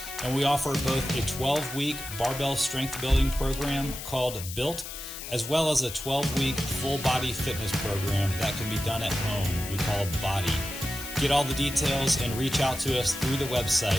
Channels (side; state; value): left; noise; hiss, 10 dB below the sound